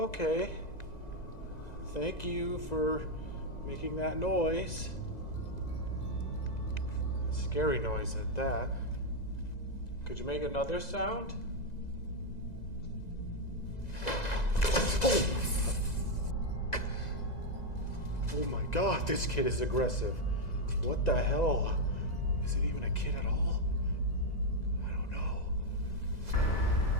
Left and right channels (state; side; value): late; right; 2.0 ms